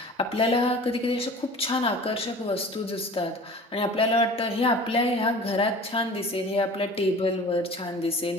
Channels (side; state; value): both; normal; correlation 0.42